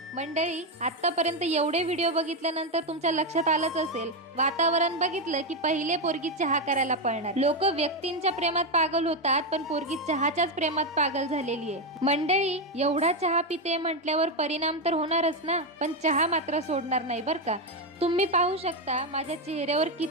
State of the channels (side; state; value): both; normal; correlation 0.07